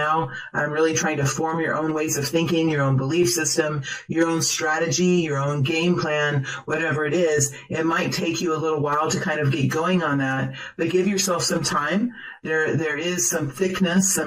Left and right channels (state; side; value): identical; both; correlation 1.00